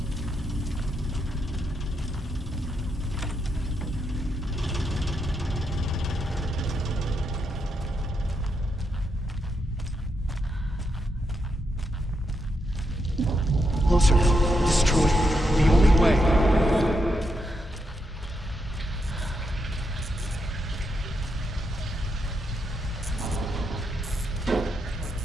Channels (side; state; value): both; normal; correlation 0.82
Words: Closer. Destroy. The only way.